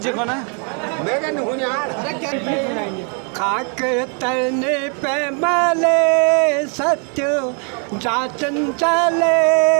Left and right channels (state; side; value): quieter; left; 39.6 dB